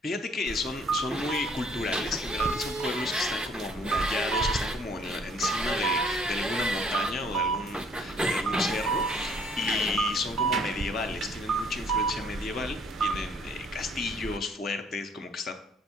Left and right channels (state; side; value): normal; both; correlation 0.62